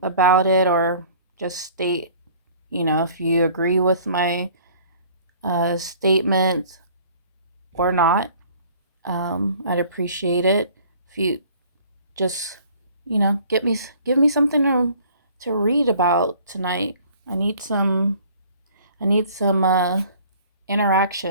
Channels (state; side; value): inverted; both; correlation -0.52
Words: it, or just state, if you agree with my statement or not. I'd appreciate it if you just give me something to read about tonight. I need some